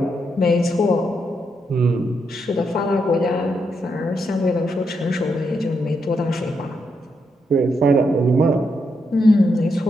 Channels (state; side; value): normal; both; correlation 0.81